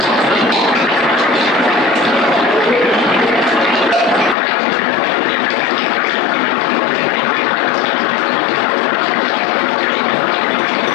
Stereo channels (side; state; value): right; drops out; at 4.4 s